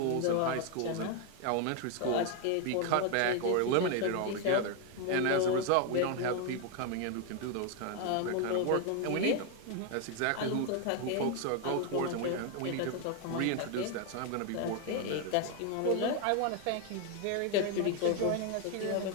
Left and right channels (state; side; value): different; both; correlation 0.01